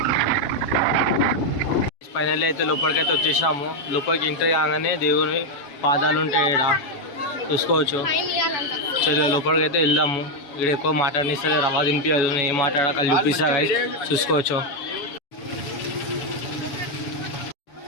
ఫైనల్ అయితే లోపలికైతే వచ్చేసాము. లోపలికి ఎంట్రీ కాగానే దేవుని పాదాలు ఉంటాయి, ఇక్కడ చూసుకోవచ్చు. చలో లోపలికి అయితే వెళ్దాము. ఇక్కడ ఎక్కువ మాట్లాడనిస్తే రవా తినిపించదు, ఏం మాట్లాడాక చూపిస్తా గైస్, చూసుకోవచ్చు.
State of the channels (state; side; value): late; right; 7.2 ms